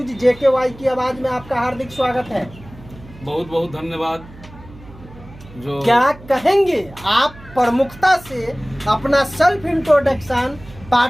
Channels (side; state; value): right; noise; hum, 19 dB below the sound